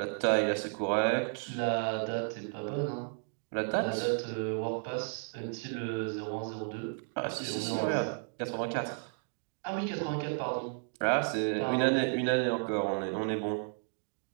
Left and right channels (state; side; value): silent; left; digital silence